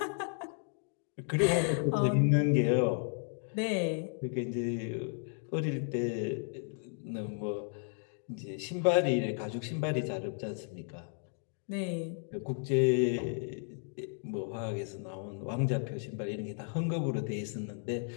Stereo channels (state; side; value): silent; right; 55 dB below the other